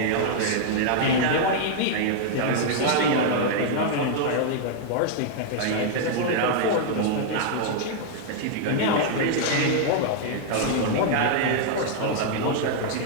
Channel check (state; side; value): different; both; correlation -0.01